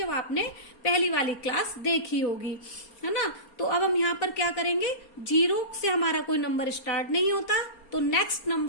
आपने पहली वाली क्लास देखी होगी, है ना। तो अब हम यहाँ पर क्या करेंगे? 0 से हमारा कोई नंबर स्टार्ट नहीं होता तो नेक्स्ट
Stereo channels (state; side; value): late; right; 4.3 ms